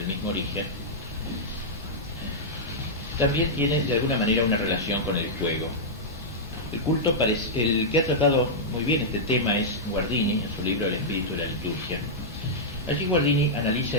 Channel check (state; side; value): normal; both; correlation -0.08